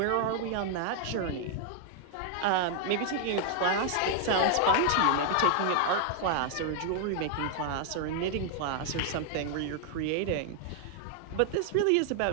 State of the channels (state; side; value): different; both; correlation 0.00